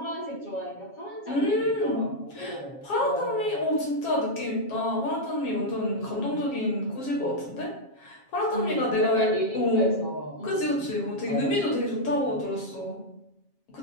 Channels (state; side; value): late; right; 7.4 ms